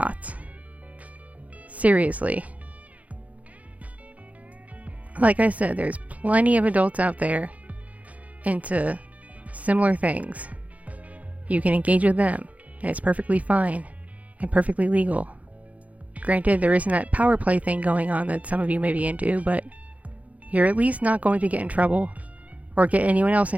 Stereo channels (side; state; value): left; late; 0.070 ms